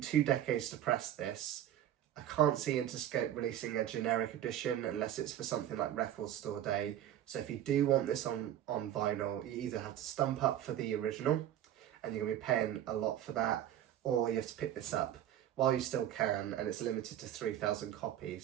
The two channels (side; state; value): left; quieter; 11.5 dB